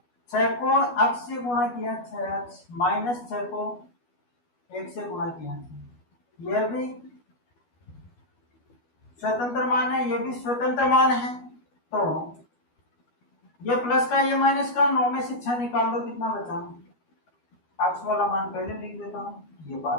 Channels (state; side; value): late; right; 12 ms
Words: 6 को x से गुणा किया 6x, -6 को 1 से गुणा किया, यह भी स्वतंत्र मान है, यह भी स्वतंत्र मान है। तो ये प्लस का ये माइनस का, 9 में से 6 निकाल दो, कितना बचा, x वाला मान पहले लिख देता हूँ, ये